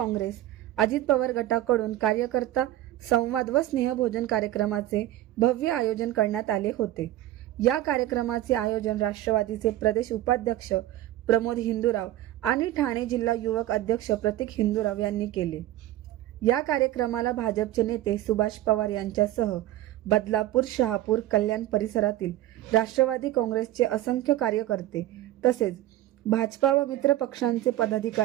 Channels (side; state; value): left; quieter; 14.4 dB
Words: अजित पवार गटाकडून कार्यकर्ता संवाद व स्नेहभोजन कार्यक्रमाचे भव्य आयोजन करण्यात आले होते. या कार्यक्रमाचे आयोजन राष्ट्रवादीचे प्रदेश उपाध्यक्ष प्रमोद हिंदूराव आणि ठाणे जिल्हा युवक अध्यक्ष प्रतीक हिंदूराव यांनी केले. या कार्यक्रमाला भाजपचे नेते सुभाष पवार यांच्यासह बदलापूर, शहापूर, कल्याण परिसरातील राष्ट्रवादी काँग्रेसचे असंख्य कार्यकर्ते तसेच भाजपा व मित्र पक्षांचे